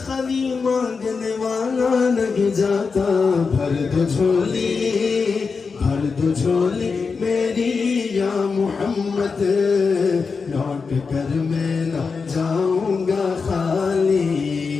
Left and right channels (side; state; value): right; quieter; 5.0 dB